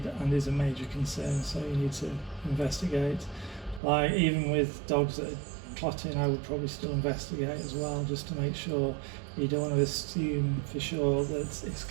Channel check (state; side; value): drops out; left; at 3.8 s